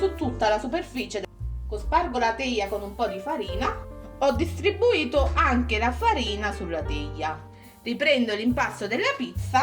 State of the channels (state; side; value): identical; both; correlation 1.00